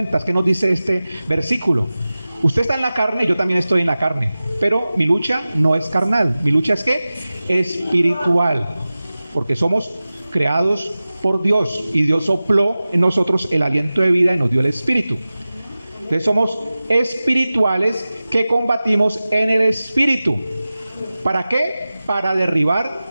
¿qué nos dice este versículo? Usted está en la carne, yo también estoy en la carne, pero mi lucha no es carnal. Mi lucha es ¿qué? Espiritual, porque somos creados por Dios, y Dios sopló en nosotros el aliento de vida y nos dio el espíritu. Entonces somos espirituales que combatimos en el espíritu. ¿Para qué? Para derribar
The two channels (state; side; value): inverted; both; correlation -0.96